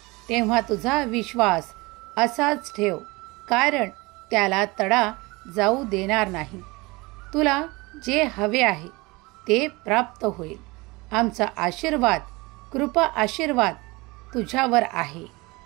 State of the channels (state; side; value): quieter; left; 23.8 dB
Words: तेव्हा तुझा विश्वास असाच ठेव, कारण त्याला तडा जाऊ देणार नाही. तुला जे हवे आहे ते प्राप्त होईल. आमचा आशीर्वाद, कृपा आशीर्वाद तुझ्यावर आहे.